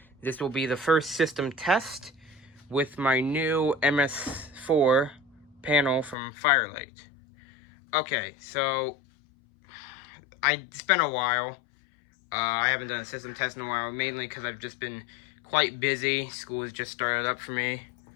this will be the first system test with my new MS-4 panel from Firelight. Okay, so it's been a while. I haven't done a system test in a while, mainly because I've just been quite busy. School has just started up for me.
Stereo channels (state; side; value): drops out; right; at 6.2 s